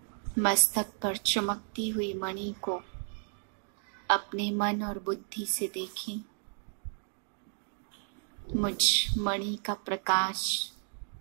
मस्तक पर चमकती हुई मणि को अपने मन और बुद्धि से देखें। मुझ मणि का प्रकाश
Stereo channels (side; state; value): left; silent; 56 dB below the other